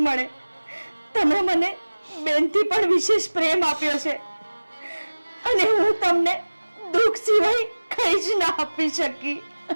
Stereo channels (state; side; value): inverted; both; correlation -1.00